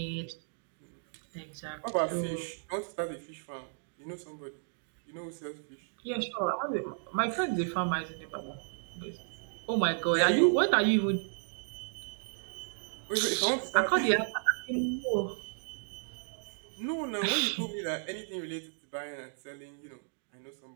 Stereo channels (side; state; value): left; silent; digital silence